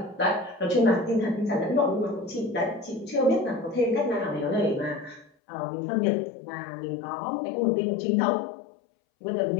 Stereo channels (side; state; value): right; drops out; at 5.3 s